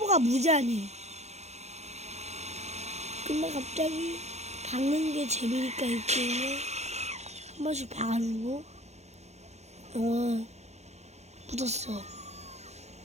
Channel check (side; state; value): left; late; 0.32 ms